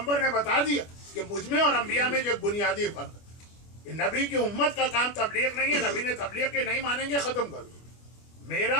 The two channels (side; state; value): right; late; 25 ms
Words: ने बता दिया कि मुझमें और अंबिया में जो एक बुनियादी फर्क है, नबी की उम्मत का काम तबलीग नहीं है। नबी ने तबलीग के नहीं मानेंगे, खत्म कर दो।